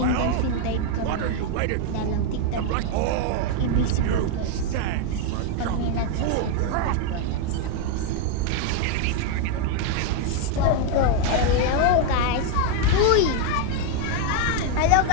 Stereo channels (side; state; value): both; different; correlation 0.01